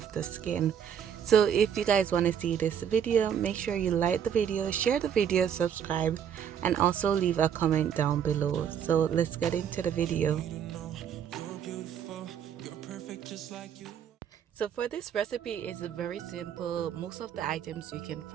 the skin. So if you guys want to see this video, make sure you like the video, share the video, subscribe, and also leave a comment down below. So let's get into the video. So for this recipe, it's very simple. Most of the items you can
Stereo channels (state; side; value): quieter; left; 8.5 dB